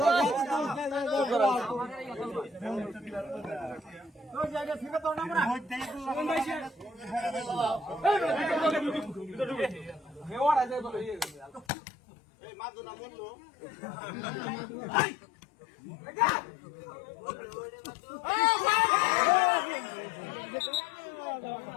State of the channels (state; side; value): drops out; right; at 11.7 s